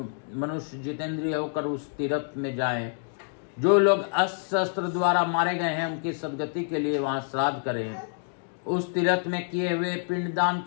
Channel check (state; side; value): silent; right; 60 dB below the other